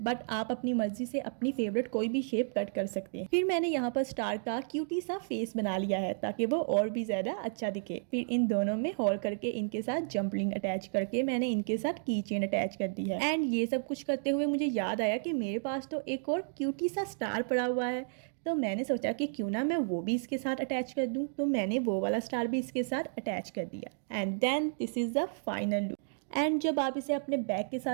बट आप अपनी मर्जी से अपनी फेवरेट कोई भी शेप कट कर सकते हैं। फिर मैंने यहाँ पर स्टार का क्यूटी सा फेस बना लिया है ताकि वो और भी ज़्यादा अच्छा दिखे। फिर इन दोनों में होल करके इनके साथ जंपलिंग अटैच करके मैंने इनके साथ की चेन अटैच कर दी है। एंड ये सब कुछ करते हुए मुझे याद आया कि मेरे पास तो एक और क्यूटी सा स्टार पड़ा हुआ है, तो मैंने सोचा कि क्यों ना मैं वो भी इसके साथ अटैच कर दूं। तो मैंने वो वाला स्टार भी इसके साथ अटैच कर दिया। And then this is the final look. And जब आप इसे अपने बैग के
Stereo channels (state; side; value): silent; left; digital silence